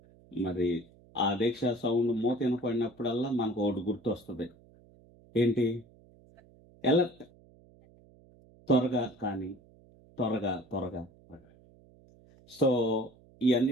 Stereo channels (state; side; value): noise; right; hum, 27 dB below the sound